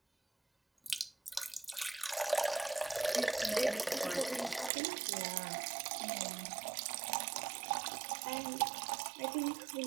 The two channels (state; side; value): drops out; left; at 4.7 s